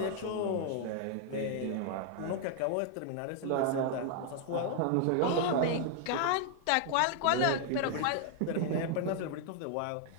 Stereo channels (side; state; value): both; different; correlation 0.00